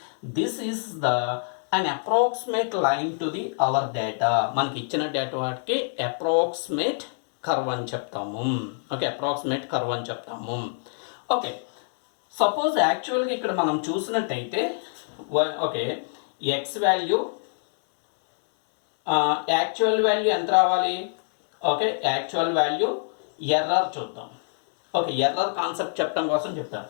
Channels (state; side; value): silent; right; digital silence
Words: this is the an approximate line to the our data. మనకి ఇచ్చిన డేటా వాటికి అప్రాక్సిమేట్ కర్వ్ అని చెప్తాము. ఓకే, అప్రాక్సిమేట్ కర్వ్ అని చెప్తాము. ఓకే, సపోజ్ యాక్చువల్గా ఇక్కడ మనం చూసినట్టయితే okay, X value actual value ఎంత రావాలి? ఓకే, యాక్చువల్ వాల్యూ ఎర్రర్ చూద్దాం. ఓకే, ఎర్రర్ కాన్సెప్ట్ చెప్పడం కోసం చెప్తాను.